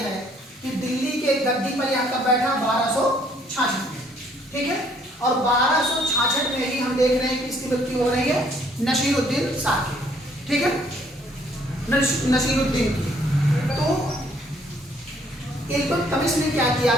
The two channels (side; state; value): both; normal; correlation 0.64